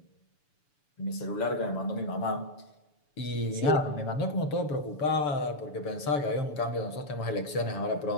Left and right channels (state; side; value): late; right; 6.9 ms